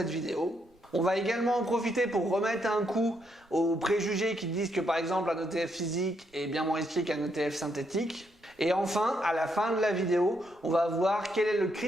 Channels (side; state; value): both; normal; correlation 0.77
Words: vidéo. On va également en profiter pour remettre un coup aux préjugés qui disent que par exemple un ETF physique est bien moins risqué qu'un ETF synthétique. Et enfin, à la fin de la vidéo, on va voir quel est le